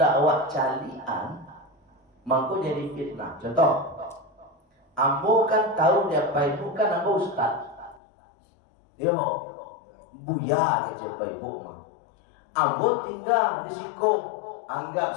awak calian, mangko jadi fitnah. Contoh, ambo kan tahu dia Pak Ibu kan ambo ustaz. Dia mau buya ke Pak Ibu mah. Ambo tinggal di Sikong. Anggap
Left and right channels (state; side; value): drops out; right; at 8.0 s